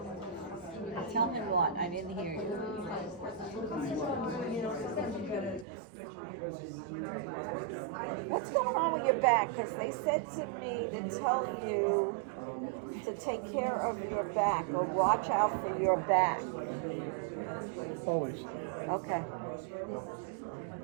Tell him what? I didn't hear you. What's going on with your back? Because they said to me to tell you to take care of your back or watch out for your back. Always. Okay.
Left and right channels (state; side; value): drops out; left; at 5.7 s